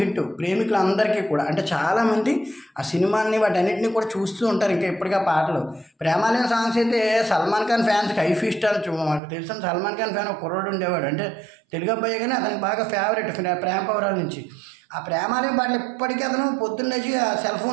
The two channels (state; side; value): drops out; left; at 9.2 s